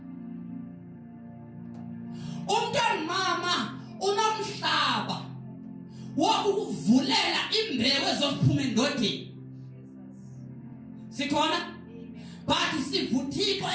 Umuntu ongumama unomhlaba wokuvulela imbewu ezophuma endodeni. Sikhona? But sivuthixo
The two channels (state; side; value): identical; both; correlation 1.00